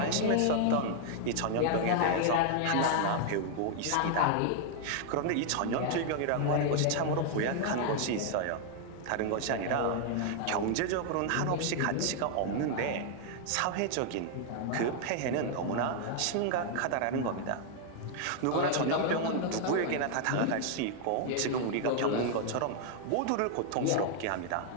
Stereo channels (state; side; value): different; both; correlation 0.00